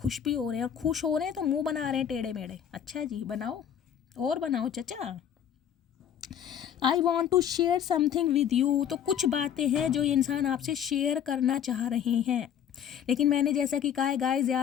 भी हो रहे हैं, और खुश हो रहे हैं तो मुंह बना रहे हैं टेढ़े मेढ़े। अच्छा जी, बनाओ और बनाओ चचा। I want to share something with you. तो कुछ बातें हैं जो ये इंसान आपसे शेयर करना चाह रहे हैं, लेकिन मैंने जैसा कि कहा है गाइस, या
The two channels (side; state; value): right; quieter; 9.1 dB